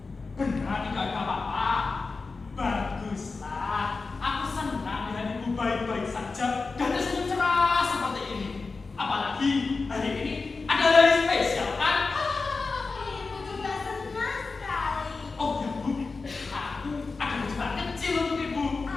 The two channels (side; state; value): right; quieter; 4.1 dB